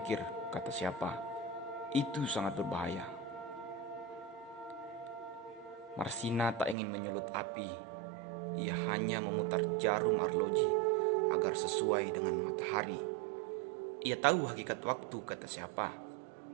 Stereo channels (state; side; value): drops out; left; at 6.8 s